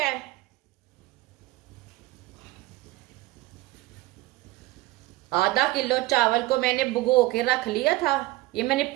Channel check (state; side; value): quieter; left; 18.3 dB